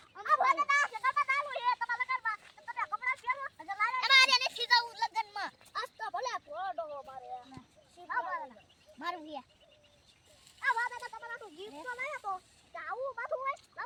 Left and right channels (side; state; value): both; identical; correlation 1.00